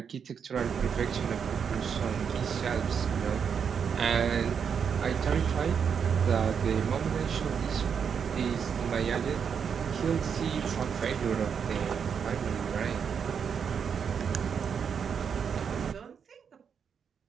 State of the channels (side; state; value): left; quieter; 7.0 dB